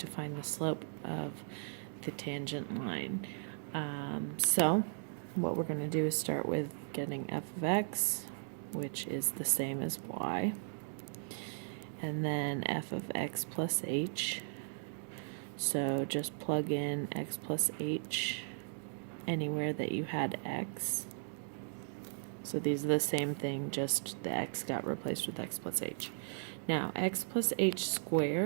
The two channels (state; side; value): silent; left; digital silence